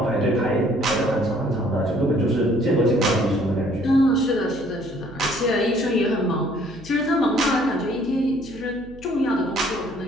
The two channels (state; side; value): noise; right; hum, 20 dB below the sound